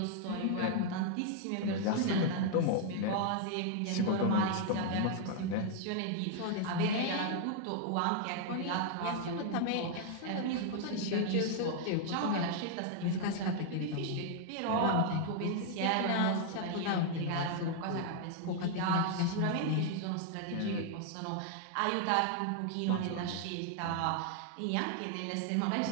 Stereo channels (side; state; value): both; different; correlation 0.00